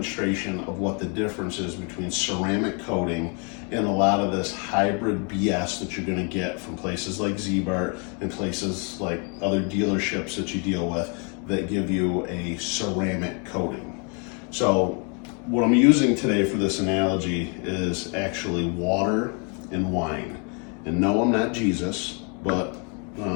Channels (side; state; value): right; quieter; 36.4 dB